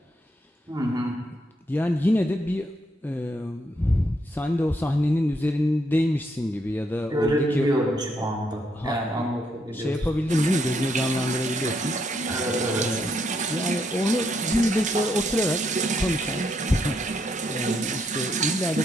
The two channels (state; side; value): normal; both; correlation 0.76